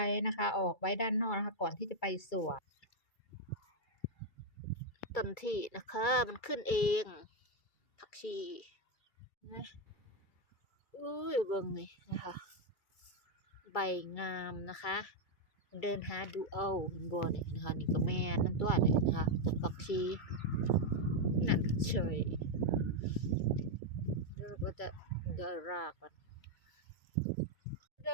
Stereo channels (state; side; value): late; right; 2.3 ms